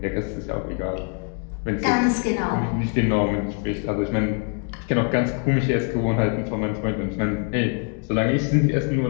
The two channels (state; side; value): quieter; right; 39.8 dB